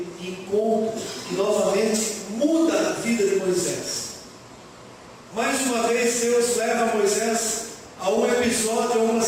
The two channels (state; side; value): identical; both; correlation 1.00